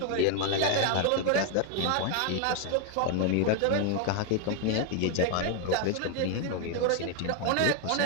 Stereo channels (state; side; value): different; both; correlation 0.00